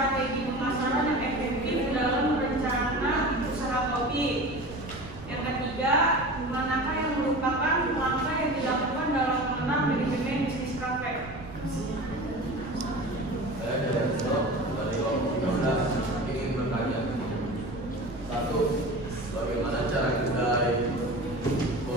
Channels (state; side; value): noise; right; rumble, 16 dB below the sound